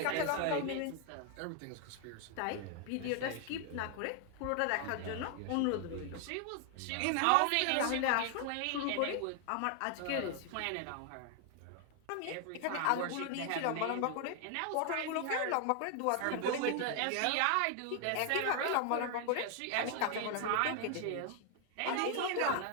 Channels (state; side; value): different; both; correlation 0.00